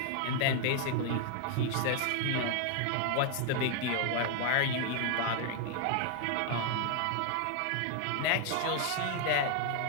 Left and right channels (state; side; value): different; both; correlation 0.00